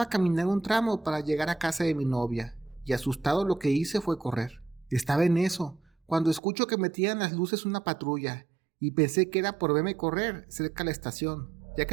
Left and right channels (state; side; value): drops out; left; at 6.4 s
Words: caminar un tramo para llegar a casa de mi novia, y asustado lo que hice fue correr. Estaba en eso, cuando escucho que metían las luces una patrulla, y pensé que era por verme correr cerca de la estación, ya